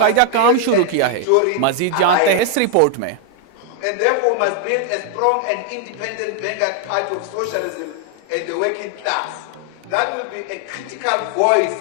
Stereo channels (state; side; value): different; both; correlation 0.00